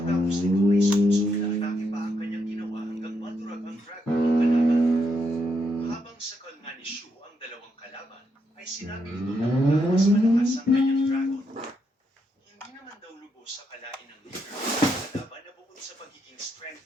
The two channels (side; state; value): both; normal; correlation 0.79